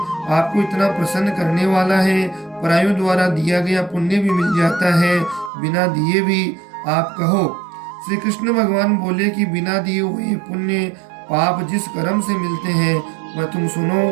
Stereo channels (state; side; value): drops out; left; at 5.5 s